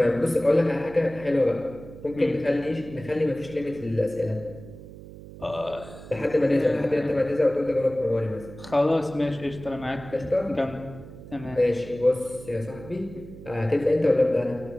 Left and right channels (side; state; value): right; noise; hum, 16 dB below the sound